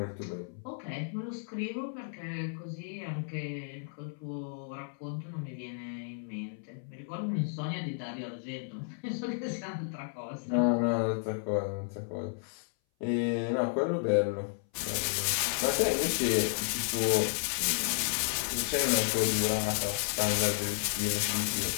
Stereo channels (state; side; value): silent; right; 56 dB below the other